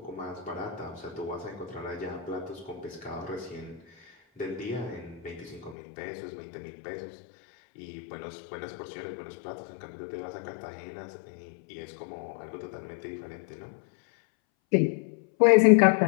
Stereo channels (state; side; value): drops out; right; at 5.8 s